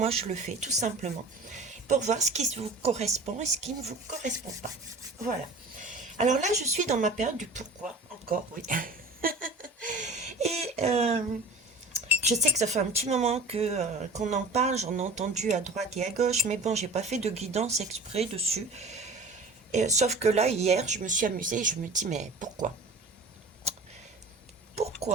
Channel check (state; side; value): quieter; left; 3.1 dB